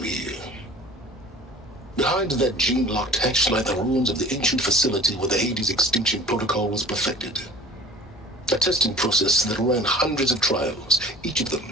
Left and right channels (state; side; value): normal; both; correlation 0.43